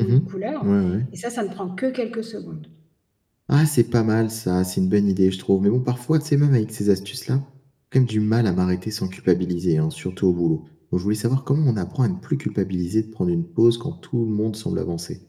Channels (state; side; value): identical; both; correlation 1.00